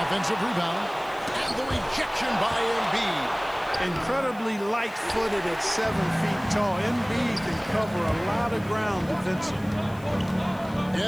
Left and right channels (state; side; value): noise; left; hiss, 24 dB below the sound